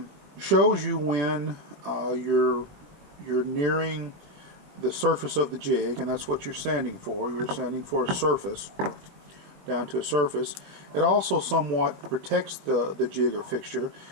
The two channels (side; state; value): left; late; 21 ms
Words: shows you when you're nearing the surface of the jig, and that's what you're sanding for. You're sanding for a surface, down to a surface. It also somewhat protects the jig or fixture.